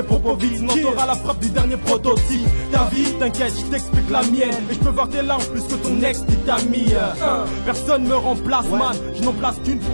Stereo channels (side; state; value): both; inverted; correlation -1.00